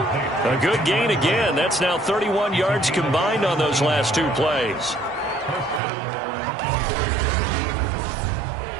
A good gain again. That's now 31 yards combined on those last two plays.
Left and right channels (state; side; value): drops out; left; at 5.8 s